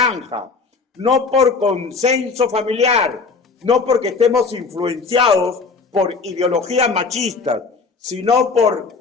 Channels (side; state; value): right; quieter; 4.6 dB